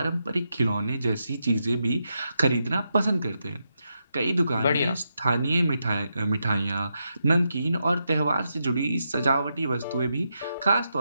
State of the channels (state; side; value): inverted; both; correlation -0.84